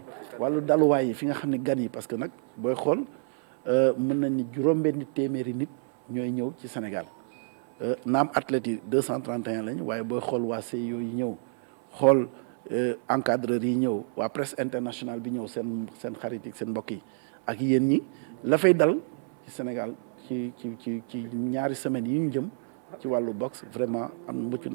wàllu daluwaay yi fi nga xam ne gan yi parce que nag booy xool mën nañ ni juróom-benni téeméeri nit ñooy ñëw ci Sénégal naam athlètes yi 231 lañ waaye booy xool waa CIO yi ñëw xool encadreurs yi ñëw waa presse internationale bi ñëw seen xarit yi seen mbokk yi ak yéen ñi la fay dal ci Sénégal ci ñaari semaines yi ñu jëm ci wàllu boxe vraiment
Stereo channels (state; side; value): silent; left; 57 dB below the other